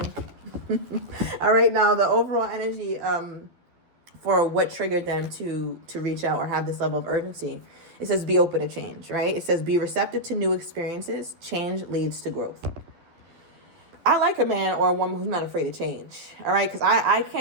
All right, now the overall energy for what triggered them to reach out or have this level of urgency. It says be open to change, right? It says be receptive to new experiences. Change leads to growth. I like a man or a woman who's not afraid to change, all right? Because I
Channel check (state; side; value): late; left; 12 ms